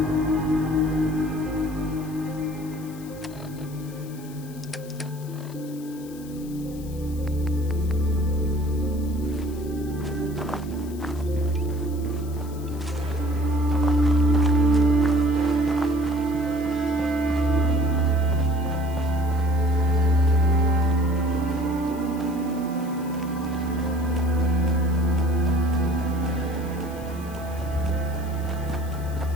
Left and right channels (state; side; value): noise; left; hiss, 21 dB below the sound